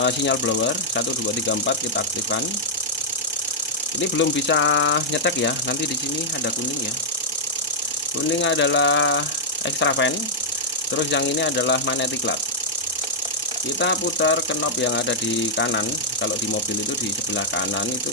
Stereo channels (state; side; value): normal; both; correlation -0.09